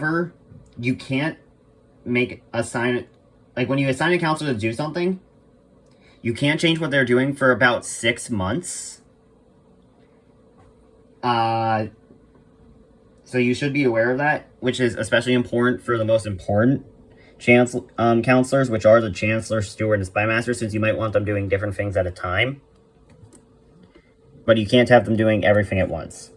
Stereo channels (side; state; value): both; identical; correlation 1.00